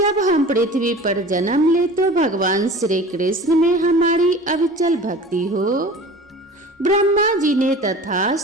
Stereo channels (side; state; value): both; normal; correlation 0.40